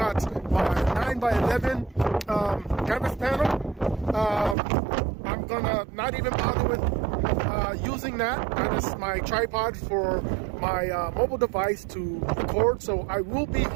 my 9x11 canvas panel. I'm going to not even bother with using that. That is my tripod for my mobile device to record. So I will be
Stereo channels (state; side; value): drops out; left; at 4.5 s